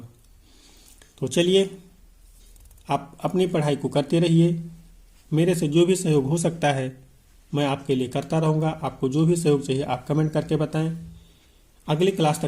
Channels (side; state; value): both; identical; correlation 1.00